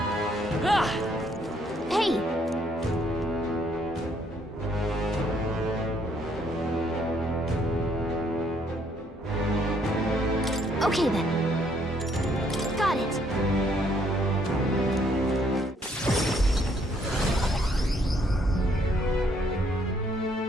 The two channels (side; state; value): both; normal; correlation 0.68